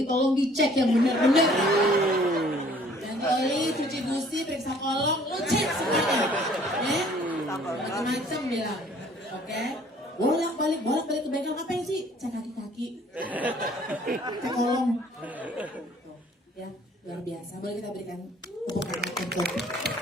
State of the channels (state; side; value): normal; both; correlation 0.56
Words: tolong dicek yang benar-benar. Ganti oli, cuci busi, periksa kolong, lu cek semuanya. Ya? Macam-macam bilang. Oke? Bolak-balik ke bengkel, ngapain sih? Cek kaki-kaki. Cek kolong. Ya, luar biasa. Boleh kita berikan tepuk tangan untuk